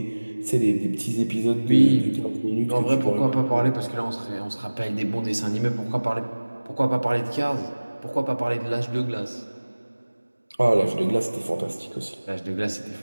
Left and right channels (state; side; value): inverted; both; correlation -1.00